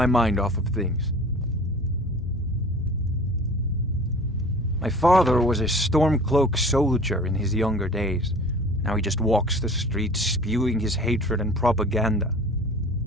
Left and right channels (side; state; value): both; normal; correlation 0.43